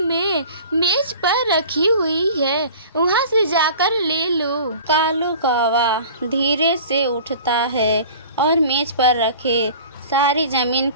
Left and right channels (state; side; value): inverted; both; correlation -0.42